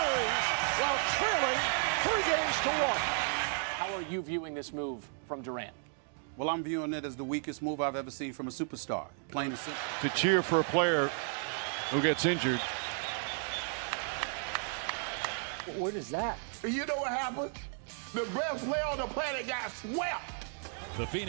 while trailing 3 games to 1. How are you viewing this move from Durant? Well, I'm viewing it as the weakest move I've ever seen from a superstar. Plain and simple. To cheer for a player who gets injured. What is that? You know what happened? The best player on the planet got swept. The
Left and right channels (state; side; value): silent; left; 55 dB below the other